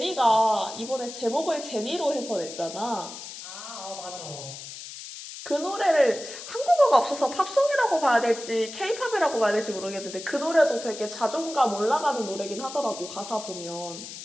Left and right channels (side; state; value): left; noise; hiss, 11 dB below the sound